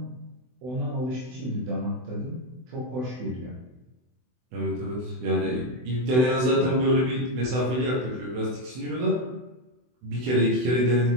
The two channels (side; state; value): left; late; 24 ms